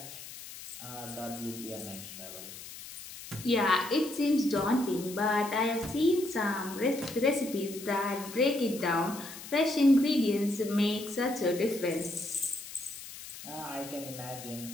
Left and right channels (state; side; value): noise; left; hiss, 13 dB below the sound